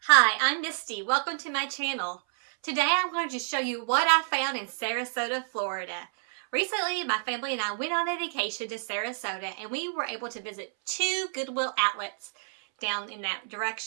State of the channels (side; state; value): left; silent; 59 dB below the other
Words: Hi, I'm Misty. Welcome to my channel. Today I'm going to show you what I found in Sarasota, Florida. Recently, my family and I went on a vacation to Sarasota and we were able to visit 2 Goodwill outlets down in that